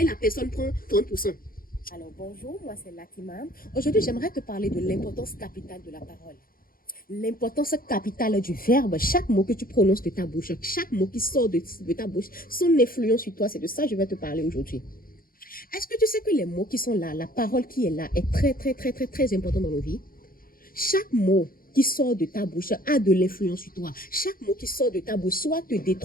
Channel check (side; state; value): right; late; 0.42 ms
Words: la personne prend 30%. Alors bonjour, moi c'est Latima. Aujourd'hui, j'aimerais te parler de l'importance capitale de la parole. L'importance capitale du verbe, chaque mot que tu prononces de ta bouche, chaque mot qui sort de ta bouche, son influence sur toi, c'est de ça que je vais te parler aujourd'hui. Est-ce que tu sais que les mots qui sont là, la parole qui est là, est très, très, très, très, très important dans nos vies? Chaque mot qui sort de ta bouche a de l'influence sur toi. Chaque mot qui sort de ta bouche soit te